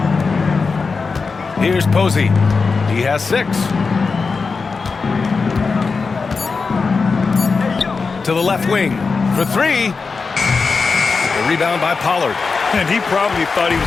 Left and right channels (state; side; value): quieter; right; 4.6 dB